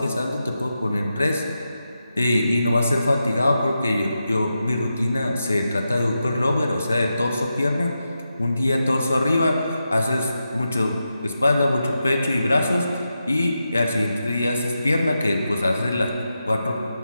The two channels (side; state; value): both; inverted; correlation -0.88